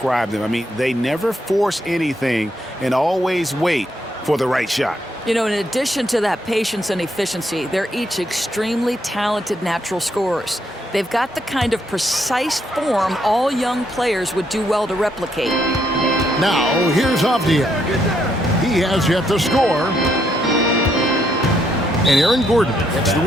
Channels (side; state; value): both; normal; correlation 0.75